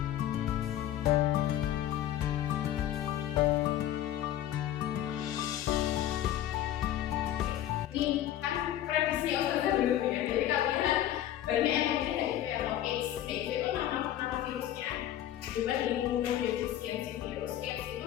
Ini kan prediksi Ustazah dulu ya, jadi kalian banyak yang mungkin kayak AIDS. AIDS itu nama virusnya. Juga imunodeficiency virus, AIDS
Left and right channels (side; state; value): right; quieter; 12.3 dB